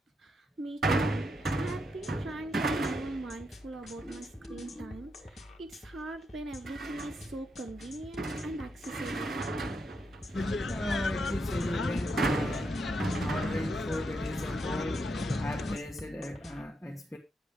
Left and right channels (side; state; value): both; normal; correlation 0.81